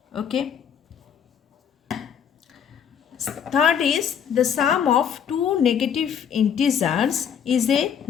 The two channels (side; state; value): right; quieter; 8.1 dB